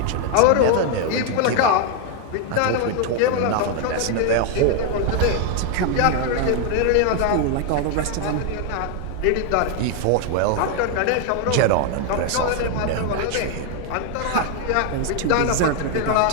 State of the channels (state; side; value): different; both; correlation 0.01